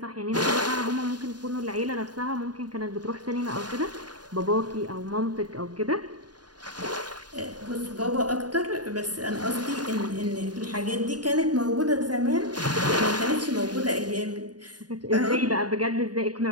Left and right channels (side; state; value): left; late; 0.69 ms